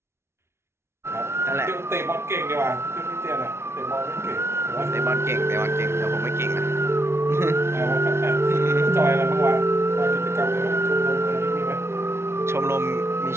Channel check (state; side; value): late; left; 0.12 ms